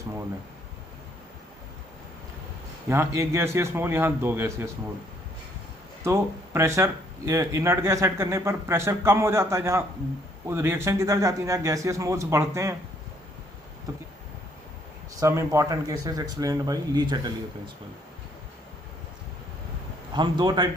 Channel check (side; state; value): both; normal; correlation 0.66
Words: मोल है, यहाँ 1 गैसियस मोल, यहाँ 2 गैसियस मोल, तो प्रेशर इनर्ट गैस ऐड करने पर प्रेशर कम हो जाता है, जहाँ रिएक्शन किधर जाती है? जहाँ गैसियस मोल्स बढ़ते हैं, तो some important cases explained by Le Chatelier principle. हम दो टाइप